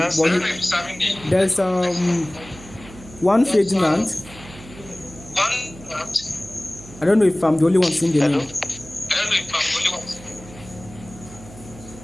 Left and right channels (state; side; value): noise; right; hum, 18 dB below the sound